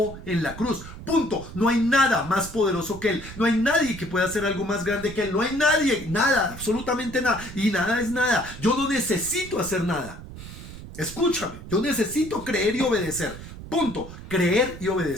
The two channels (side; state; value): right; noise; rumble, 13 dB below the sound